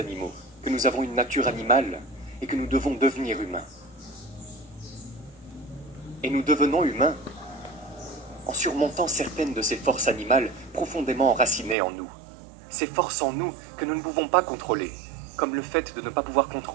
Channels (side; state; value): left; drops out; at 11.8 s